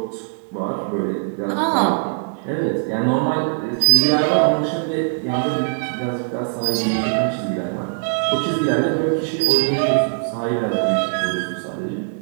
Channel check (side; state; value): left; silent; digital silence